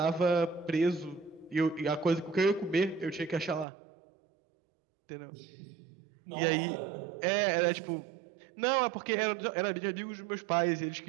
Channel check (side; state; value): left; drops out; at 3.7 s